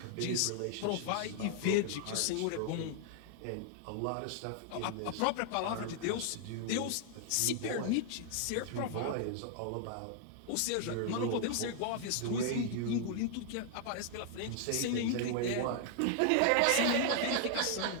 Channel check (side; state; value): both; different; correlation 0.00